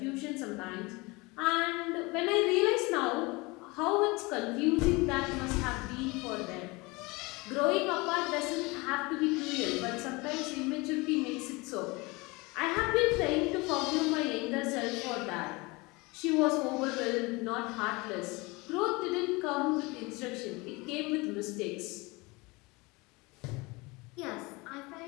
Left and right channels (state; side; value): quieter; right; 24.9 dB